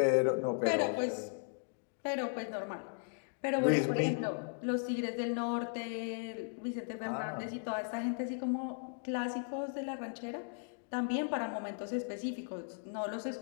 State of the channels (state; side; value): silent; right; digital silence